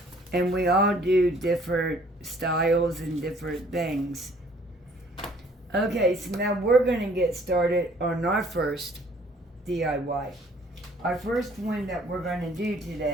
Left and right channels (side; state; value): both; normal; correlation 0.58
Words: And we all do different styles and different things. Okay, so now we're going to get started on our first DIY. Our first one that we're going to do